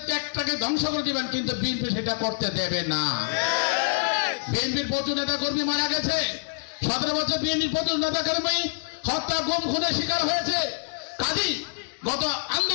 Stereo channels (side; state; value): right; silent; digital silence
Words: ত্যাগটাকে ধ্বংস করে দিবেন, কিন্তু বিএনপি সেটা করতে দেবে না। বিএনপির প্রচুর নেতা কর্মী মারা গেছে, 17 বছর বিএনপির প্রচুর নেতা কর্মী হত্যা, গুম, খুনের শিকার হয়েছে। কাজী গত